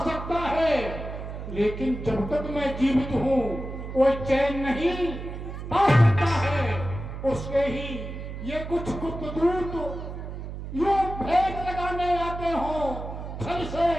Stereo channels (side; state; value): right; noise; hum, 8 dB below the sound